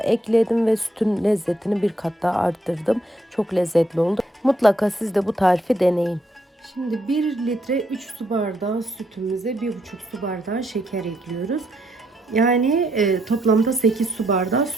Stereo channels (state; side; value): normal; both; correlation 0.75